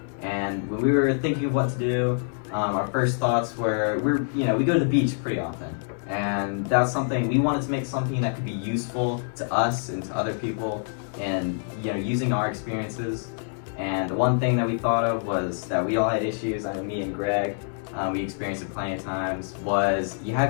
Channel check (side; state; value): right; silent; digital silence